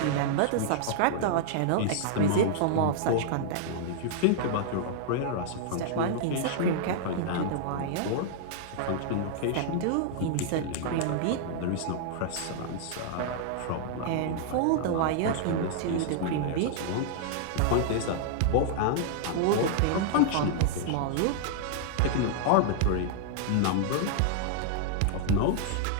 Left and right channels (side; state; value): both; different; correlation -0.01